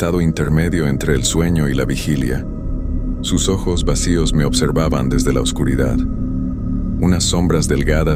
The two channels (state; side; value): identical; both; correlation 1.00